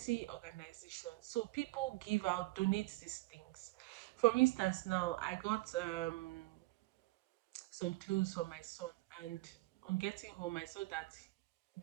organizations. So people give out, donate these things. For instance, now I got some clothes for my son, and on getting home, I saw that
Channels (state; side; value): quieter; left; 20.6 dB